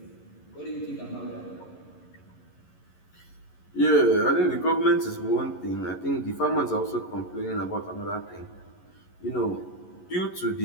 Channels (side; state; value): right; late; 11 ms